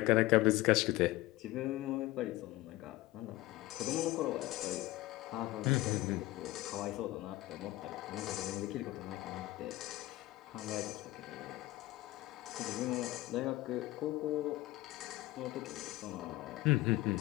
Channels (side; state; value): right; quieter; 17.7 dB